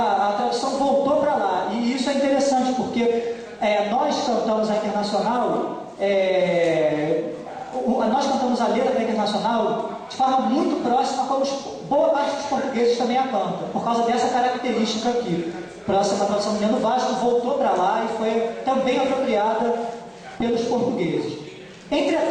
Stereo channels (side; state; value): both; identical; correlation 1.00